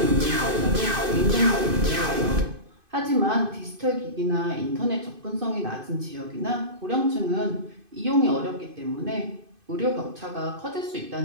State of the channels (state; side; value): late; left; 2.5 ms